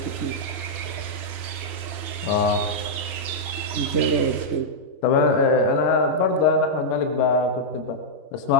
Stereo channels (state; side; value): late; right; 2.8 ms